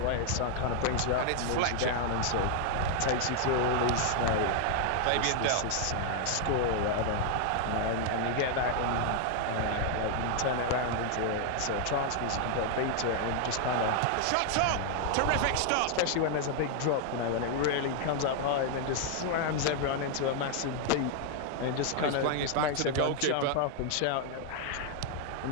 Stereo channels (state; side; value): different; both; correlation 0.00